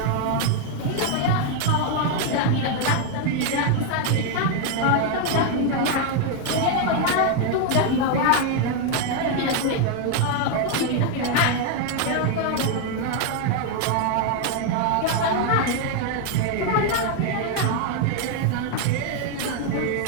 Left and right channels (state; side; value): different; both; correlation 0.00